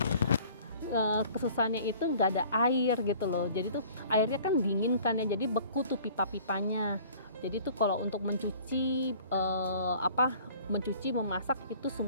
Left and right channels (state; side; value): inverted; both; correlation -0.50